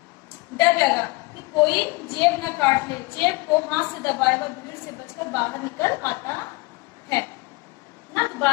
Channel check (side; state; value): right; quieter; 24.8 dB